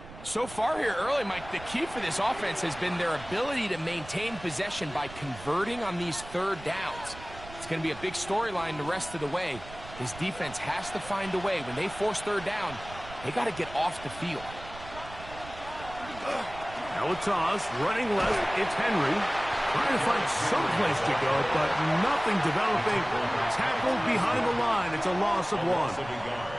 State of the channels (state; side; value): noise; right; rumble, 16 dB below the sound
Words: So far here early, Mike, the key for this offense has been their ability to maintain possession by converting on these third downs. It's going to be a big storyline the rest of the way. This defense has to find a way. When they force third down, they got to get off the field. Now a toss, running left, it's Henry. Trying to find some place to go, but nothing developing. Tackled behind the line. It's a loss of 1.